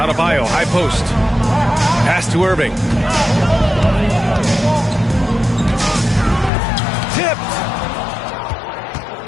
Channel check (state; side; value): drops out; right; at 6.5 s